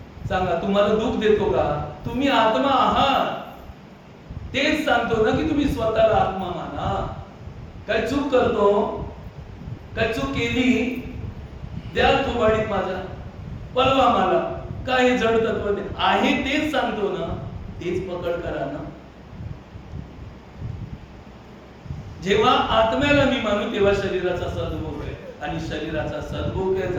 सांगा, तुम्हाला दुःख देतो का? तुम्ही आत्मा आहात, तेच सांगतो ना की तुम्ही स्वतःला आत्मा माना. काय चूक करतो? काय चूक केली? द्या थोबाडीत माझ्या, पळवा मला. काय हे जड तत्व आहे तेच सांगतो ना, तेच पकड करा ना. जेव्हा आत्म्याला मी मानू तेव्हा शरीराचा सद्भोग आहे. आणि शरीराचा सदुपयोग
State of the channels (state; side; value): identical; both; correlation 1.00